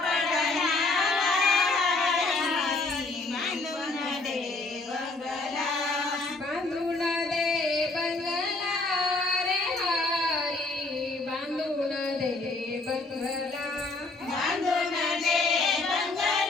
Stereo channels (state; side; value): quieter; right; 3.3 dB